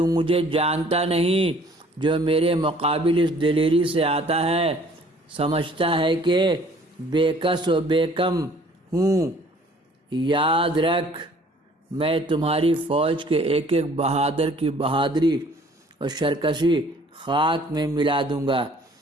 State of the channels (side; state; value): both; normal; correlation 0.55